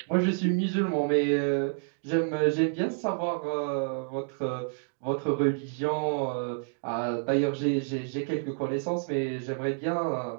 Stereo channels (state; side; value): silent; left; digital silence